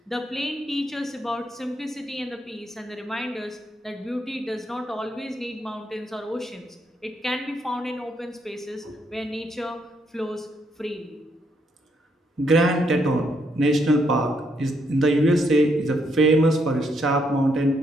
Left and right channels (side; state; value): both; normal; correlation 0.75